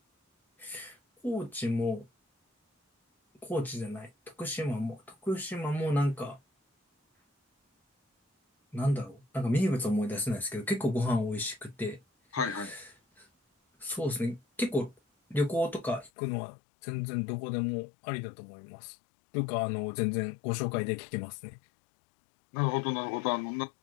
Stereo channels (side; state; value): right; drops out; at 16.1 s